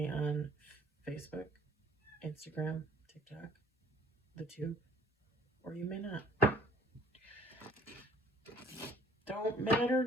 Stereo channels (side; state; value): both; normal; correlation 0.55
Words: on Facebook, Instagram, TikTok, the tube, or you may not. Don't matter